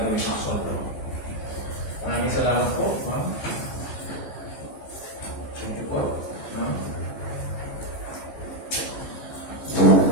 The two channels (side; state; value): right; late; 15 ms